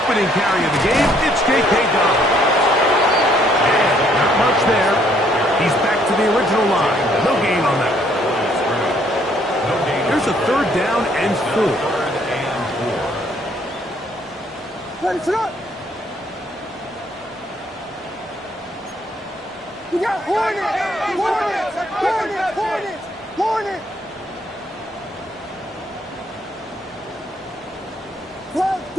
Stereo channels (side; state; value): both; normal; correlation 0.66